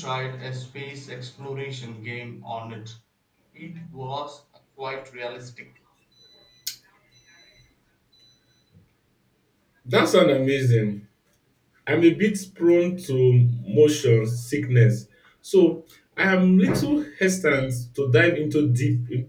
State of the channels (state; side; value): identical; both; correlation 1.00